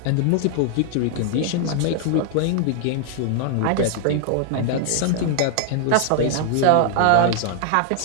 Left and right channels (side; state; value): both; different; correlation 0.00